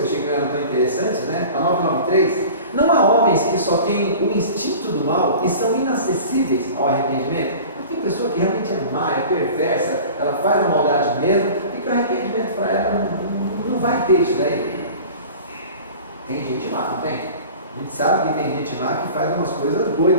achei que não eram tão interessantes, né? A 993, não há homens que só têm o instinto do mal e são inacessíveis ao arrependimento. Tem pessoa que realmente é má, é perversa, ela faz a maldade mesmo e que o arrependimento para ela não vai ter isso daí. Tem gente má, não tem? A gente sabe que tem gente má que faz umas coisas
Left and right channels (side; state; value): both; inverted; correlation -0.40